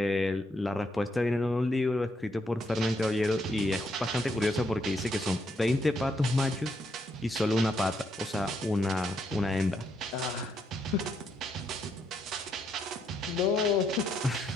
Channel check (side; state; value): both; normal; correlation 0.76